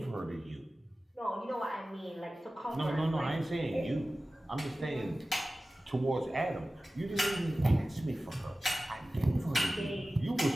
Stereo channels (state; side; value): normal; both; correlation 0.96